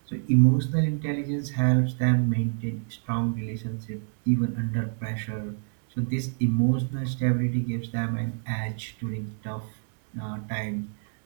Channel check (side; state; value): left; silent; digital silence